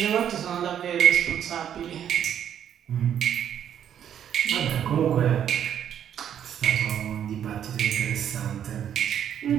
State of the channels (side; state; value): left; quieter; 9.5 dB